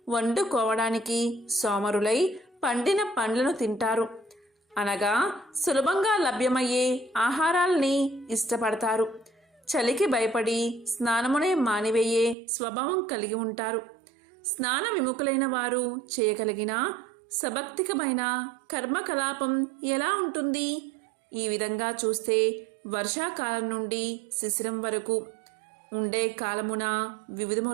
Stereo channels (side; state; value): left; drops out; at 12.4 s